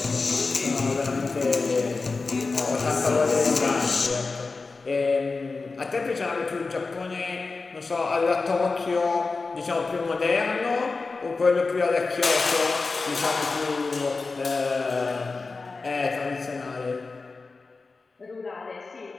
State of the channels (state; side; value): quieter; right; 4.0 dB